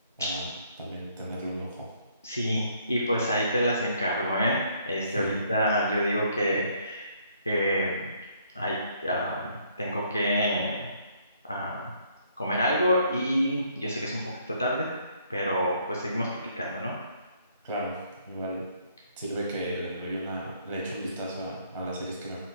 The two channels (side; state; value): both; inverted; correlation -0.66